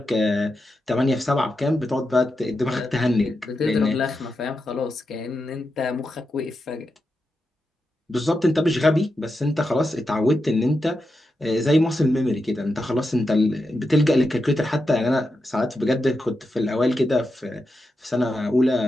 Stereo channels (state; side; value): normal; both; correlation 0.88